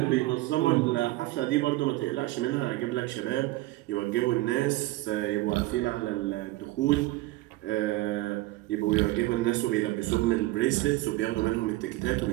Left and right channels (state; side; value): quieter; left; 18.5 dB